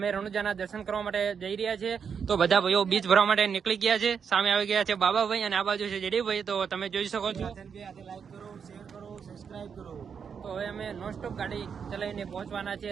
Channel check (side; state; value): left; quieter; 6.7 dB